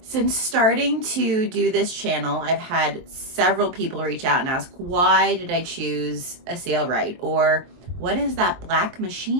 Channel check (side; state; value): left; late; 23 ms